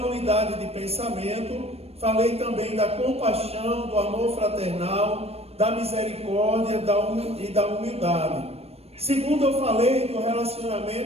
unidade de pensamento, falei também da compaixão, do amor fraternal, da misericórdia e da humildade. Segundo, eu falei do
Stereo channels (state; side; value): late; left; 0.29 ms